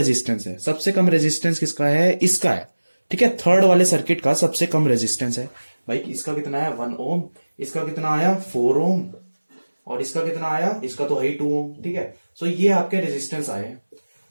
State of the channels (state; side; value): inverted; both; correlation -1.00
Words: है, सबसे कम रेजिस्टेंस किसका है, इसका है। ठीक है, थर्ड वाले सर्किट का सबसे कम रेजिस्टेंस है भाई। इसका कितना है 1 ओम, इसका कितना आया 4 ओम, और इसका कितना आया, इसका तो है ही 2 ओम। ठीक है, सो ये आपके रेजिस्टेंस आए।